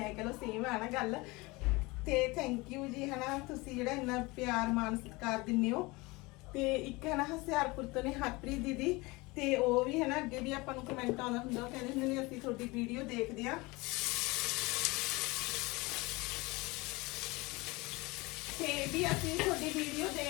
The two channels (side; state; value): right; quieter; 23.6 dB